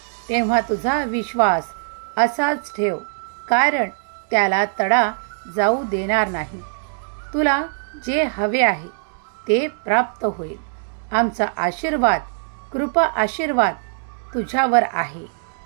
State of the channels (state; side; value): silent; left; 64 dB below the other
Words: तेव्हा तुझा विश्वास असाच ठेव, कारण त्याला तडा जाऊ देणार नाही. तुला जे हवे आहे ते प्राप्त होईल. आमचा आशीर्वाद, कृपा आशीर्वाद तुझ्यावर आहे.